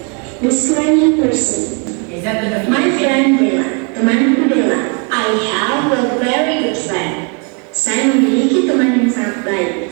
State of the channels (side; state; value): left; quieter; 36.7 dB